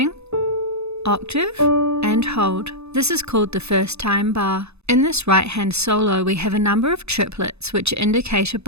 Octave and hold. This is called the first time bar. In this right hand solo we have a number of triplets which are indicated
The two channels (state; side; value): late; left; 0.80 ms